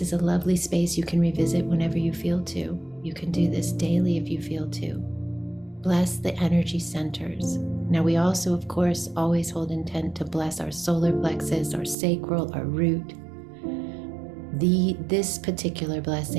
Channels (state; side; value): drops out; left; at 12.0 s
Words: a lovely space you can revisit whenever you feel to. You can do this daily if you feel to. Bless the energy centers. Now we also, of course, always hold intent to bless our solar plexus, our sacral, our root. This particular